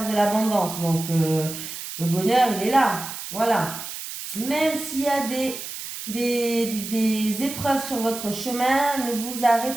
de l'abondance, donc le bonheur il est là, voilà. Même s'il y a des épreuves sur votre chemin, ne vous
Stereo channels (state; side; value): noise; right; hiss, 9 dB below the sound